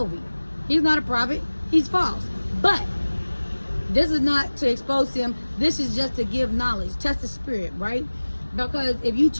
he's not a prophet, he's false. But this is not to expose him. This is just to give knowledge, test the spirit, right? Because if you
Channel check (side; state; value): both; inverted; correlation -1.00